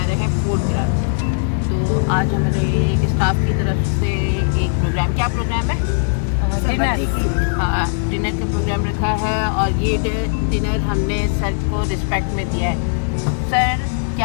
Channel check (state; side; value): silent; right; digital silence